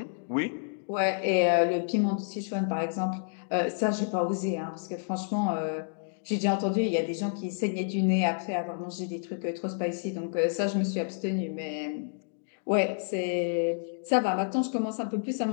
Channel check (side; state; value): right; silent; digital silence